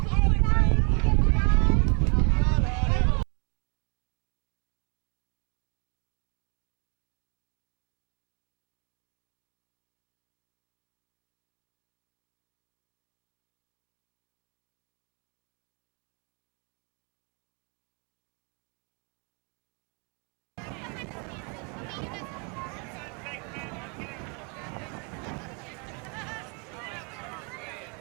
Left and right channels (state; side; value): quieter; left; 37.3 dB